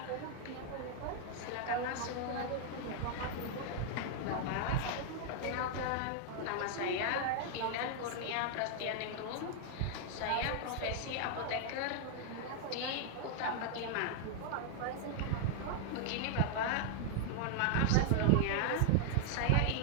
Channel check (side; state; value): both; different; correlation 0.00